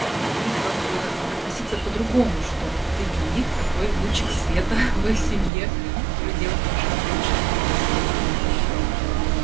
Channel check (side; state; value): left; drops out; at 5.5 s